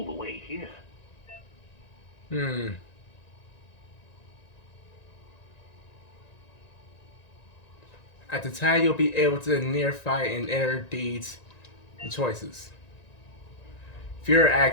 the way here. At the time, you'll be able to near fight and enter deeds and choices. Fear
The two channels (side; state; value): right; late; 1.9 ms